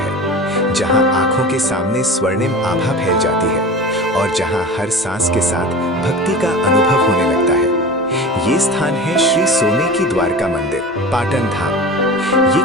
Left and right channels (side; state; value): both; normal; correlation 0.34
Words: जहां आंखों के सामने स्वर्णिम आभा फैल जाती है और जहां हर सांस के साथ भक्ति का अनुभव होने लगता है। ये स्थान है श्री सोने की द्वारका मंदिर, पाटन धाम।